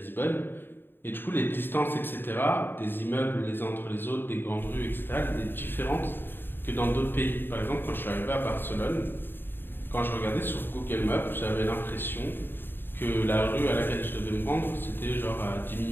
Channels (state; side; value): late; right; 0.098 ms